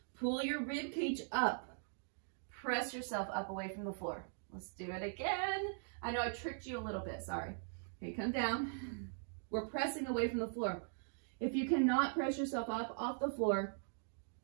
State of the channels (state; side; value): silent; left; digital silence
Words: Pull your rib cage up. Press yourself up away from the floor. Let's do it again. I know I tricked you a little bit, sorry. Okay, come down. We're pressing away from the floor. If you cannot press yourself up off the floor,